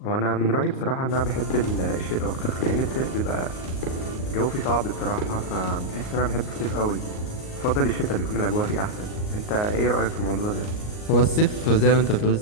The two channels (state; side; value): late; right; 38 ms